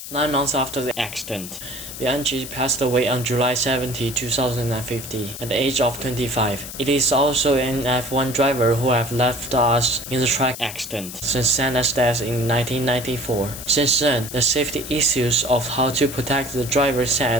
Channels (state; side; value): noise; left; hiss, 10 dB below the sound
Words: 9 months after the accident, Bianchi passed away on July 17, 2050, at the age of 25. It is also an F1 driver who have left us in the track accident since Senna's death in 1994. Since then, the safety issues of how to protect the driver's